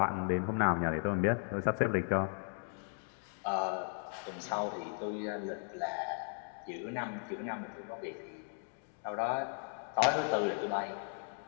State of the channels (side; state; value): right; silent; 54 dB below the other